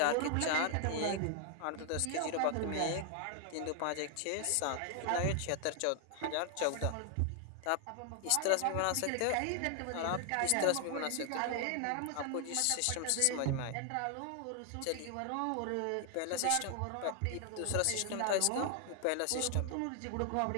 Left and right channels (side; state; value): both; different; correlation 0.00